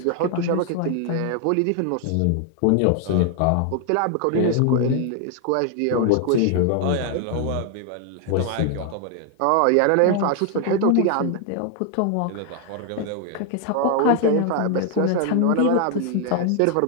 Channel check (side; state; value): both; different; correlation 0.00